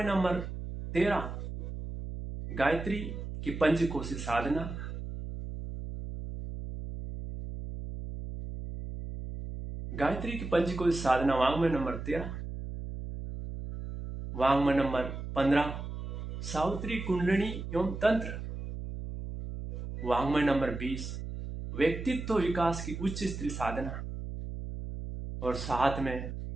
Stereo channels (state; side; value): noise; right; hum, 7 dB below the sound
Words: नंबर 13 गायत्री की पंचकोशी साधना। गायत्री की पंचकोशी साधना वांग्मय नंबर 13। वांग्मय नंबर 15 सावित्री कुंडलिनी एवं तंत्र। वांग्मय नंबर 20 व्यक्तित्व विकास की उच्च स्त्री साधना। और साथ में